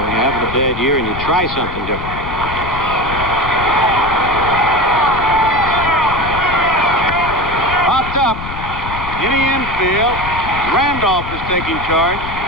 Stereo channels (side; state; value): left; noise; rumble, 9 dB below the sound